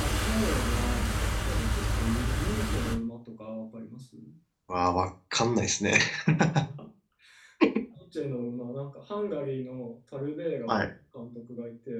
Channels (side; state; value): both; identical; correlation 1.00